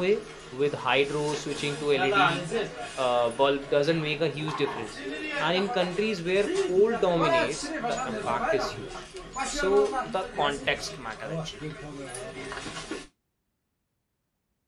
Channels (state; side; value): identical; both; correlation 1.00